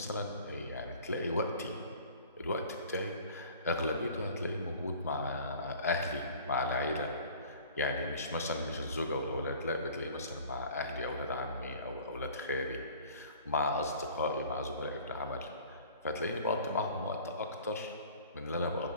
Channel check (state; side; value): inverted; both; correlation -0.47